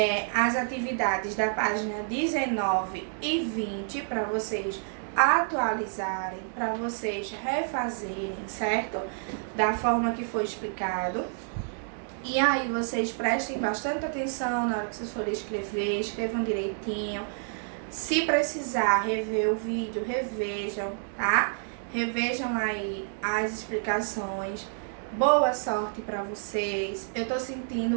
as atividades da página 19 e 20 para vocês atualizarem, para vocês refazerem, certo? Da forma que foi explicado. E aí vocês prestem bastante atenção na hora que vocês forem escrever, escrevam direitinho, Se precisar rever o vídeo, revejam, tá? Revejam aí as explicações. Boa sorte para vocês. Eu tô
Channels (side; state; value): left; silent; digital silence